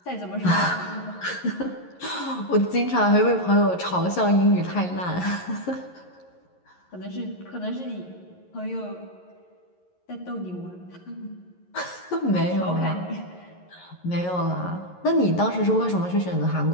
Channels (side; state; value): right; late; 11 ms